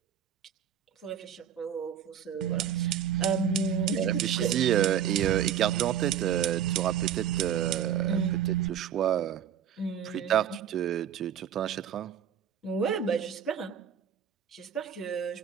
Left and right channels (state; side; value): quieter; left; 9.0 dB